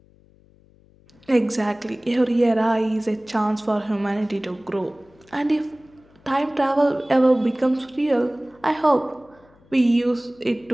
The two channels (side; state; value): left; noise; hum, 29 dB below the sound